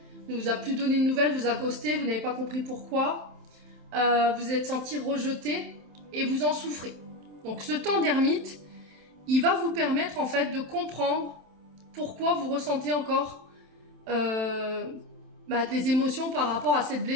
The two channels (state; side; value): late; left; 27 ms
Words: ne vous a plus donné de nouvelles, vous a ghosté, vous n'avez pas compris pourquoi, vous êtes senti rejeté et vous en souffrez. Donc ce temps d'ermite, il va vous permettre en fait de comprendre pourquoi vous ressentez encore des émotions par rapport à cette